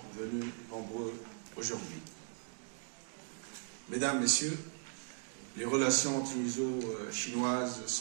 venus nombreux aujourd'hui. Mesdames, Messieurs, les relations tuniso-chinoises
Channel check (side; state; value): left; silent; 52 dB below the other